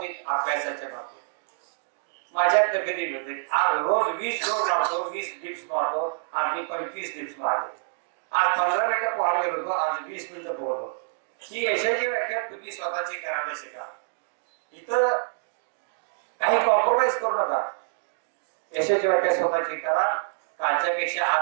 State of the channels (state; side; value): silent; left; digital silence